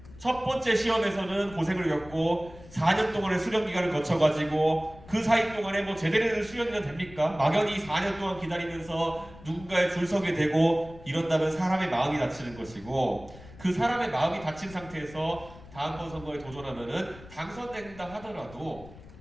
첫 번째 시험에서는 고생을 겪고 4년 동안의 수련 기간을 거쳐가지고 그 사이 동안에 뭐 제대로 된 수련이나 됩니까? 막연히 4년 동안 기다리면서 누군가에 줄 서게 되고 이런다면 사람의 마음이 다치는 것이고 그 사람의 마음이 다친 상태에서 다음번 선거에 도전하면은 당선된다 하더라도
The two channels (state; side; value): noise; left; rumble, 19 dB below the sound